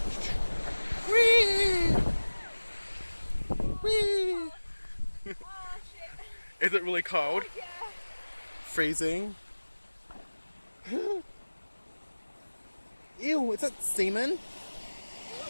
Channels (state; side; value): inverted; both; correlation -1.00